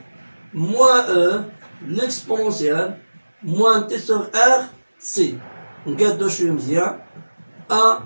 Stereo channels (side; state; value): both; inverted; correlation -1.00